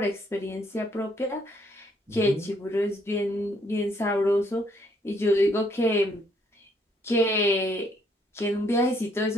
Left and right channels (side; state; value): both; normal; correlation 0.68